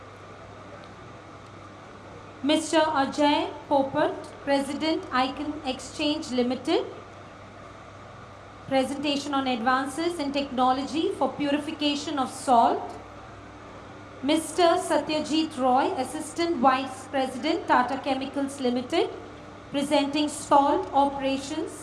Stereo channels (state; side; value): identical; both; correlation 1.00